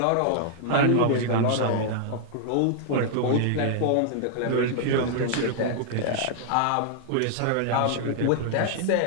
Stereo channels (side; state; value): both; different; correlation -0.01